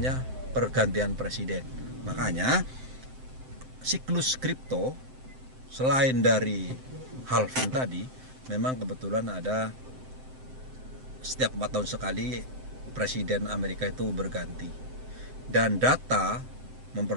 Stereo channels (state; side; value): late; left; 7.8 ms